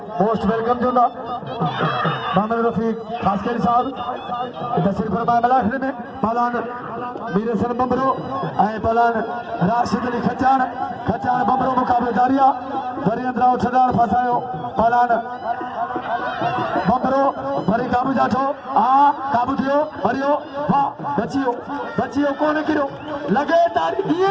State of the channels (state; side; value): identical; both; correlation 1.00